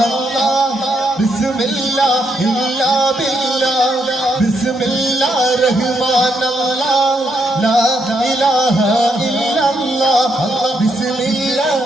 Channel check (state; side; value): normal; both; correlation 0.77